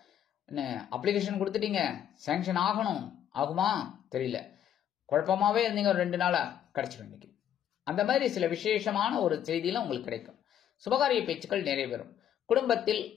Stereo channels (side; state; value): right; quieter; 10.1 dB